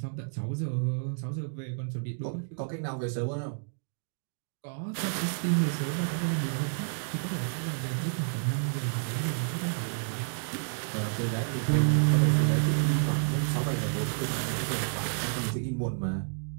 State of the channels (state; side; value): silent; left; digital silence